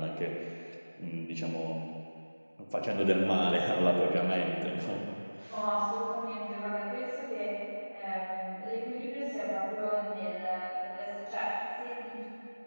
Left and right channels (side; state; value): both; inverted; correlation -1.00